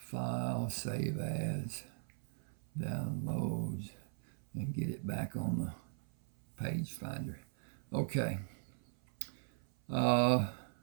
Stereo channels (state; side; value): silent; left; 52 dB below the other